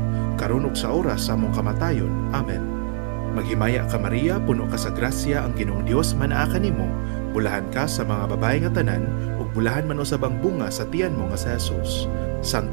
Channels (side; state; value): left; silent; 63 dB below the other